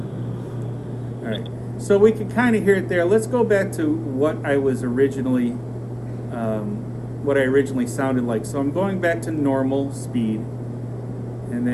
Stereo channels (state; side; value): identical; both; correlation 1.00